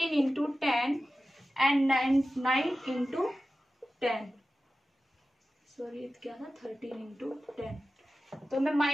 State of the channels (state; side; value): normal; both; correlation 0.94